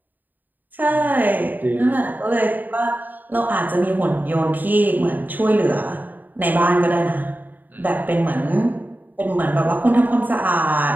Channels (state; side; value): late; left; 0.088 ms